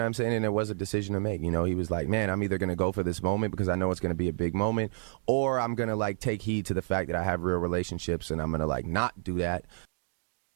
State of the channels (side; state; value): left; silent; digital silence